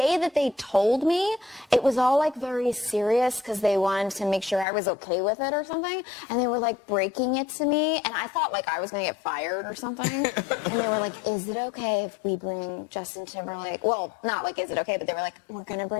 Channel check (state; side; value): drops out; right; at 4.7 s